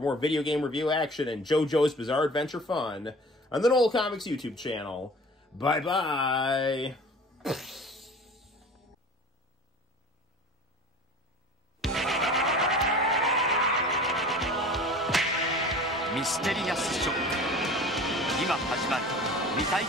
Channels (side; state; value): both; normal; correlation 0.42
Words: video game review action and JoJo's Bizarre Adventure fun on the Noel Comics YouTube channel. Bye-bye! Mysterious Shock 今始まる未体